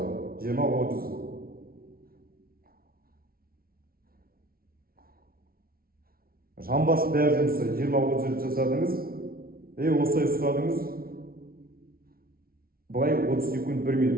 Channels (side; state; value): left; late; 0.43 ms